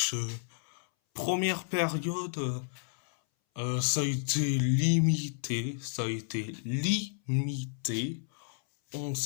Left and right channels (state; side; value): silent; right; 57 dB below the other